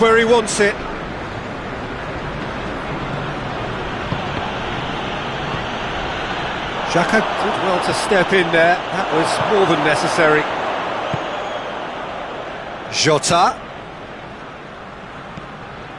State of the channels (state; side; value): identical; both; correlation 1.00